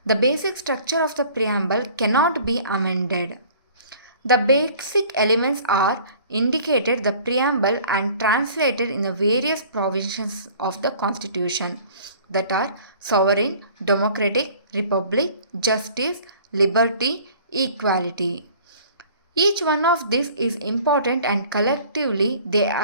the basic structure of the preamble cannot be amended. The basic elements are indicated the preamble and translated in the various provisions of the Constitution that are sovereign, democratic, republic, justice, liberty, equality. Each one of these is important and collectively they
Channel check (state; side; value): inverted; both; correlation -0.50